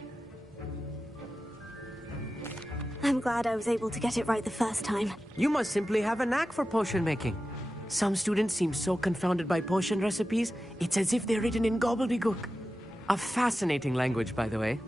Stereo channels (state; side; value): normal; both; correlation 0.93